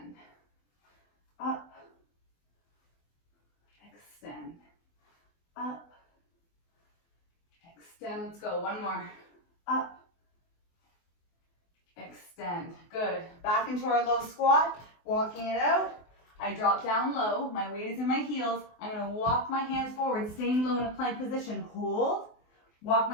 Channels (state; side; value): late; right; 24 ms